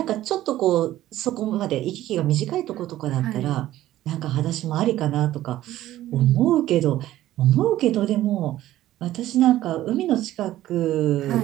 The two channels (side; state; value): left; quieter; 14.3 dB